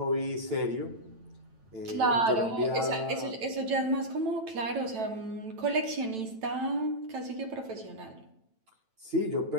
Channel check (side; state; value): left; late; 9.0 ms